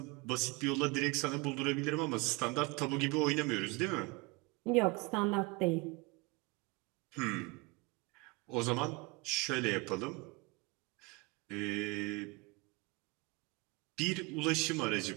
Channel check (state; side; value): quieter; left; 26.4 dB